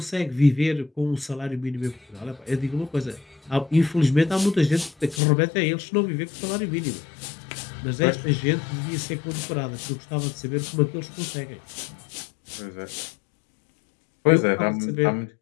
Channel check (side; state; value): right; drops out; at 5.2 s